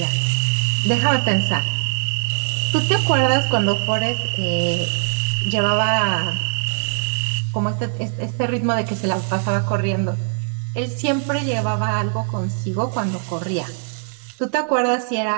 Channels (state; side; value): silent; left; 65 dB below the other